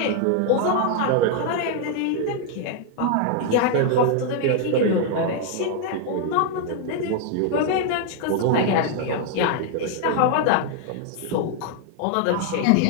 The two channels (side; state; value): both; different; correlation 0.00